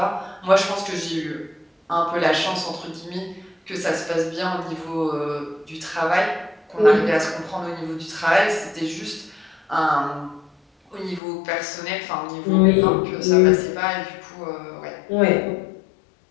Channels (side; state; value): right; drops out; at 11.2 s